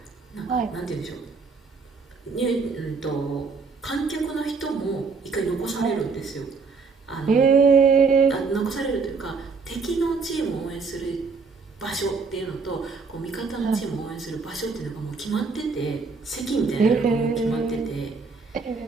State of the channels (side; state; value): left; quieter; 4.7 dB